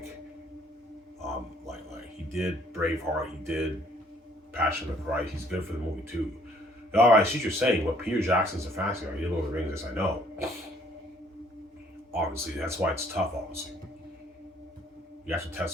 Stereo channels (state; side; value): normal; both; correlation 0.61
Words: he did Braveheart, he did Passion of the Christ. He's good for the movie too. All right, I see what you're saying. But Peter Jackson's a fantasy guy. He did Lord of the Rings. Yes, I know. Obviously, that's why it's tough. Obviously, you have to